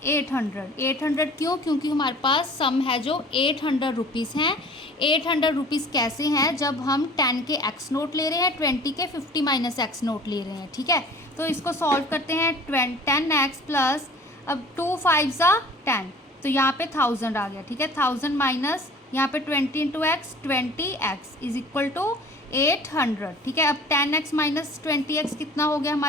800। 800 क्यों, क्योंकि हमारे पास सम है जो 800 रुपीज़ हैं। 800 रुपीज़ कैसे हैं, जब हम 10 के एक्स नोट ले रहे हैं, 20 के 50 माइनस एक्स नोट ले रहे हैं, ठीक है। तो इसको सॉल्व करते हैं, 10x प्लस, अब 2 5 ज़ा 10, तो यहाँ पे 1000 आ गया, ठीक है। 1000 माइनस यहाँ पे 20 into x 20x is equal to 800, ठीक है। अब 10x माइनस 20x कितना हो गया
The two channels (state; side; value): normal; both; correlation 0.46